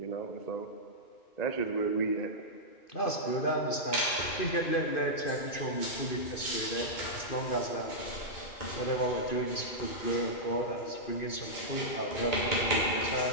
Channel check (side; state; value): right; late; 2.5 ms